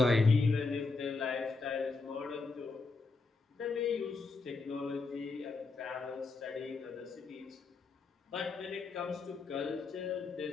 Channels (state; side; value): quieter; right; 4.0 dB